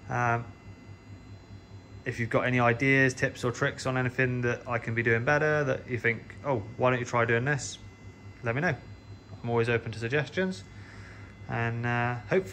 If you've got any ideas, tips or tricks on anything that I can be doing better, that you think, oh, why don't you try doing this, let me know. I'm always open to suggestions. And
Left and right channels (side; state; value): both; identical; correlation 1.00